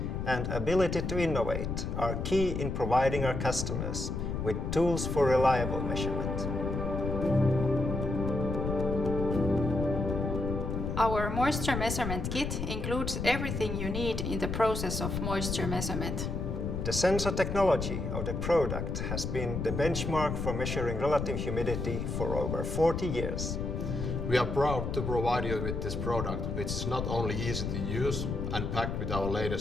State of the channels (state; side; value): noise; left; rumble, 3 dB below the sound